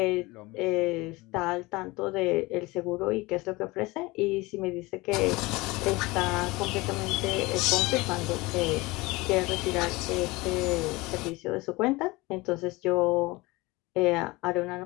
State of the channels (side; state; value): right; quieter; 22.4 dB